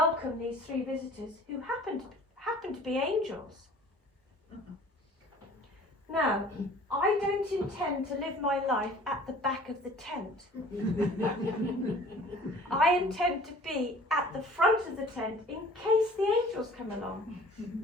these three visitors who happened to be angels. Now, I don't intend to live my life at the back of the tent. I intend to be at the front of the tent in case the angels come along.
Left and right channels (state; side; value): normal; both; correlation 0.49